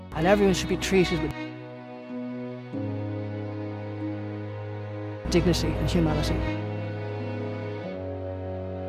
And everyone should be treated with dignity and humanity.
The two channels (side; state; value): both; identical; correlation 1.00